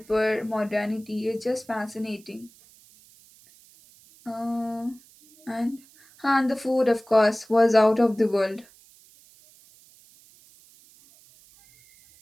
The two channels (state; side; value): noise; right; hiss, 27 dB below the sound